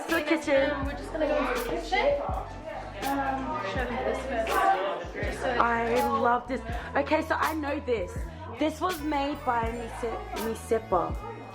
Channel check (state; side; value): identical; both; correlation 1.00